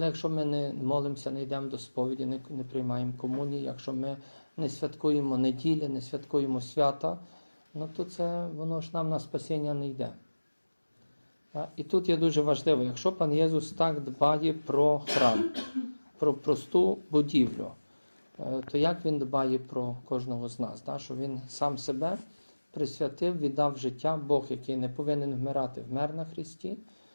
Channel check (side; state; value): both; inverted; correlation -1.00